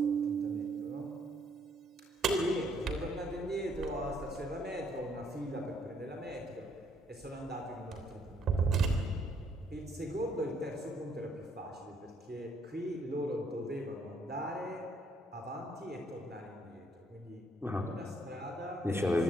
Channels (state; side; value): normal; both; correlation 0.68